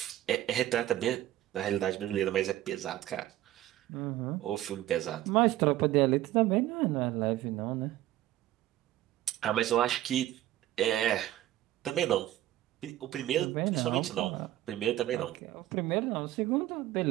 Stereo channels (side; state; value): left; quieter; 14.2 dB